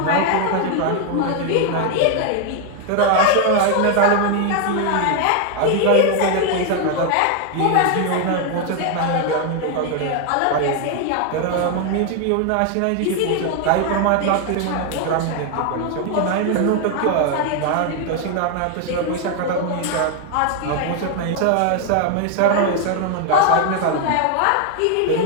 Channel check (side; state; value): both; different; correlation 0.01